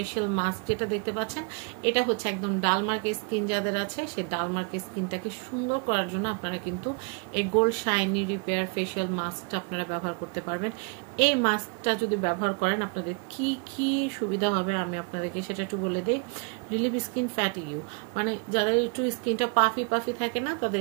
mask যেটা দেখতে পাচ্ছেন, এটা হচ্ছে একদম ডালমার্কের স্কিন যাদের আছে সেই ডালমার্কের স্কিনটাকে সুন্দর করার জন্য আপনারা কিন্তু এই গোল্ড শাইনি রিপেয়ার ফেশিয়াল মাস্কটা আপনারা ব্যবহার করতে পারবেন। এই মাস্কটা যদি ব্যবহার করেন আপনাদের কি কি সুবিধা হবে আমি আপনাদেরকে সেটা একটু বলে দিই। রিলিভ স্কিন ফ্যাটিগিউ, মানে যাদের একটু স্কিনটা পাফি পাফি থাকে না, তাদের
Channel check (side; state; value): left; quieter; 35.3 dB